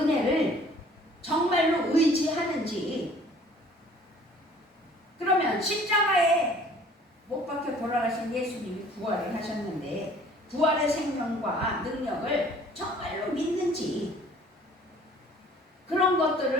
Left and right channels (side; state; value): both; normal; correlation 0.53